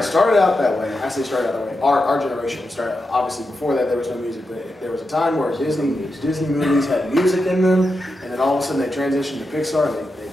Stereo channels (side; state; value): both; normal; correlation 0.88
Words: started out that way. I say started out that way. Our generation started, obviously before that there was no music, but there was a time where Disney movies had music in them, and then all of a sudden they transitioned to Pixar, and they